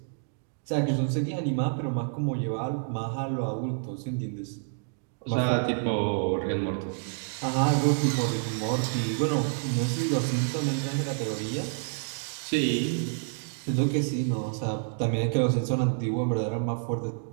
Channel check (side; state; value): left; silent; digital silence